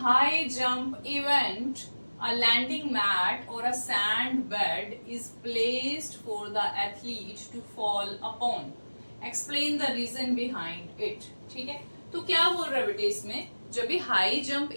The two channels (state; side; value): inverted; both; correlation -1.00